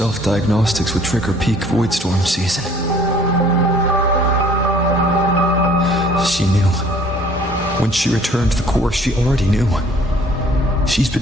would trigger peak void storm season. She knew. When she returned to the core, she already knew. She's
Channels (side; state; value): both; normal; correlation 0.55